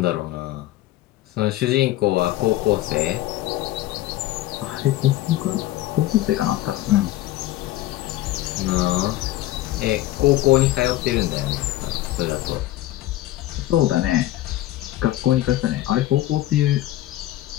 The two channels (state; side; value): quieter; right; 15.4 dB